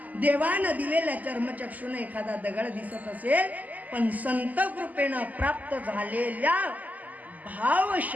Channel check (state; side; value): late; left; 0.079 ms